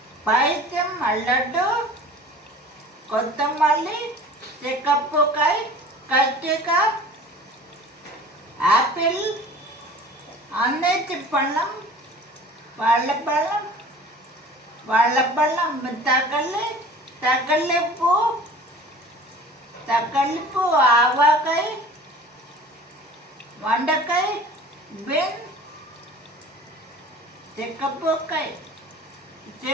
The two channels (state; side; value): normal; both; correlation 0.44